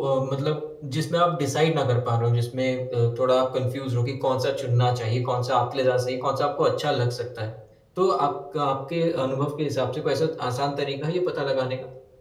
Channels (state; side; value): identical; both; correlation 1.00